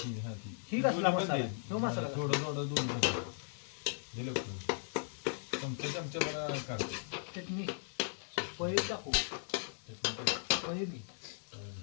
हा ती ही कसला मसाला तो मसाला थोडं थोडं दोन दिलं चमचे मला काढ चटणी पनीर टाकू पनीर घे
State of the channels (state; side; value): silent; right; digital silence